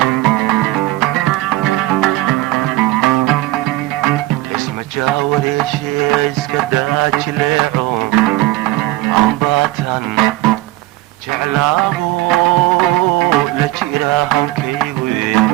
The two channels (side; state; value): left; quieter; 17.8 dB